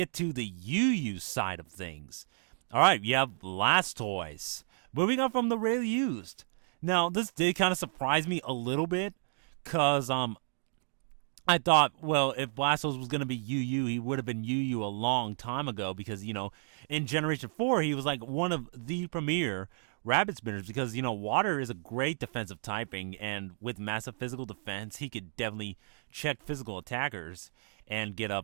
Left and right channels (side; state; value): left; silent; digital silence